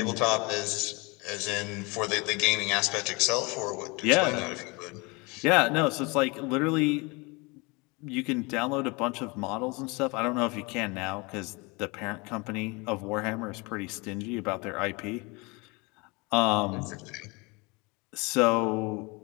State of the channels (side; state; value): right; quieter; 27.3 dB